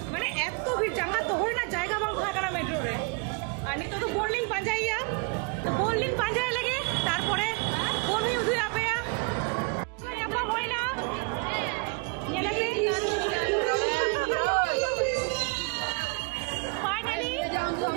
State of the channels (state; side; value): quieter; left; 32.3 dB